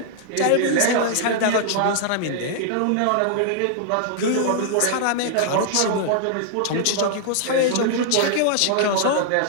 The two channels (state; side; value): different; both; correlation -0.01